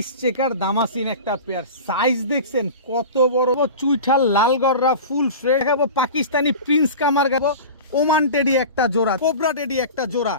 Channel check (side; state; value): both; inverted; correlation -0.33